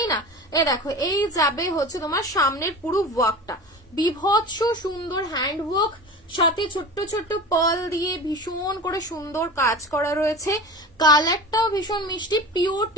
না? এ দেখো, এই যাবে হচ্ছে তোমার সামনের পুরো ওয়ার্কটা, বিভৎস সুন্দর হ্যান্ড ওয়ার্ক, সাথে ছোট্ট ছোট্ট পার্ল দিয়ে ভীষণ করে সুন্দর কাজ করা রয়েছে। কালারটাও ভীষণ মিষ্টি, পিওর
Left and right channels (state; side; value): normal; both; correlation 0.33